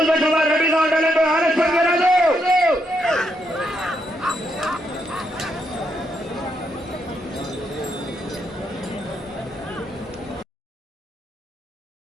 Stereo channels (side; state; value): both; normal; correlation 0.78